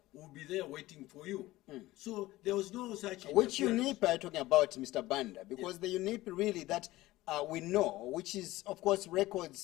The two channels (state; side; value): quieter; right; 17.6 dB